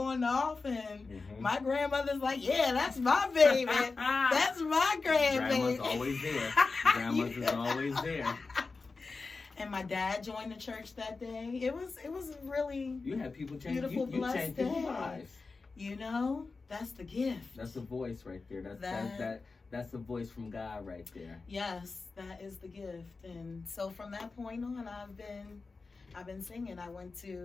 off, and my grandmother's like, yeah, that's my baby. That's my grandbaby. Grandma's always there. Grandma's always there. And my dad joined the church that day. It was really You had people change. beautiful, You blessed changed people's day. lives. You know, that's the gift. That's the voice right there. That's the voice from God right there. Yes, that is the gift. And so from that point on, I've been singing. I went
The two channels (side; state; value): right; quieter; 4.1 dB